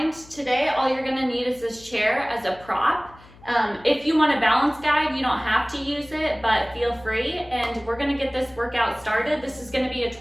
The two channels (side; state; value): left; noise; hum, 23 dB below the sound